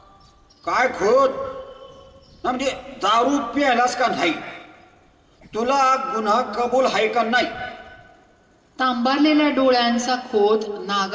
काय खोत ना, म्हणजे दारू प्यायलास का नाही? तुला गुन्हा कबूल आहे का नाही? तांबारलेल्या डोळ्यांचा खोत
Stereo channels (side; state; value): both; identical; correlation 1.00